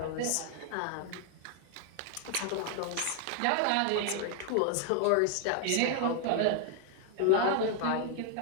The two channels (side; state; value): both; different; correlation 0.00